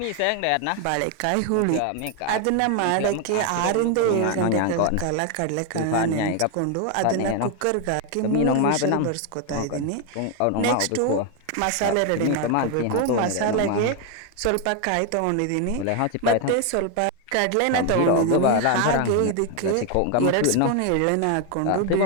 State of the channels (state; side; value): different; both; correlation 0.01